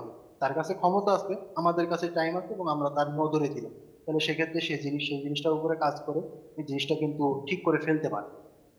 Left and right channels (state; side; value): identical; both; correlation 1.00